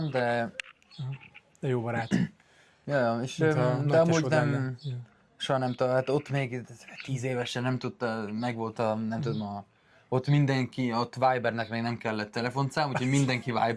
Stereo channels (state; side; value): identical; both; correlation 1.00